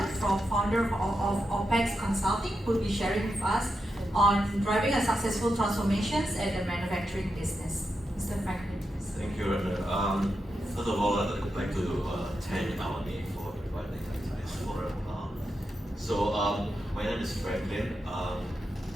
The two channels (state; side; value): normal; both; correlation 0.87